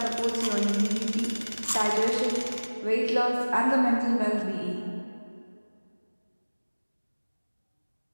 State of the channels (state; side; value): inverted; both; correlation -1.00